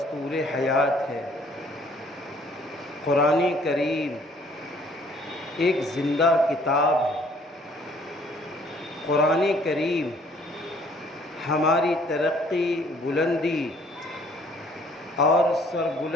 حیات ہے۔ قرآن کریم ایک زندہ کتاب ہے۔ قرآن کریم ہماری ترقی، بلندی اور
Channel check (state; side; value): normal; both; correlation 0.59